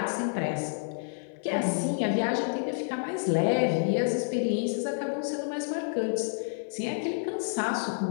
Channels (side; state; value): right; silent; digital silence